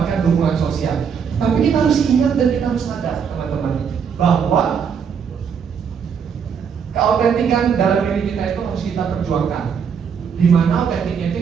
dukungan sosial. Tapi kita harus ingat dan kita harus sadar teman-teman bahwa keautentikan dalam diri kita itu harus kita perjuangkan. Dimana autentiknya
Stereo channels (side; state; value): left; quieter; 6.9 dB